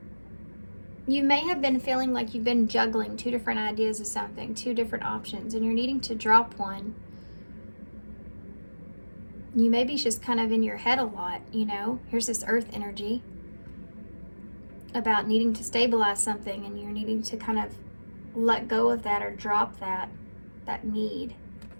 You may have been feeling like you've been juggling two different ideas of something, two different options, and you're needing to drop one. You may be just kind of in your head a lot, you know. Here's this earth energy about needing to stabilize something, and you're needing to kind of let go of that or drop that need.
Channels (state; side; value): inverted; both; correlation -1.00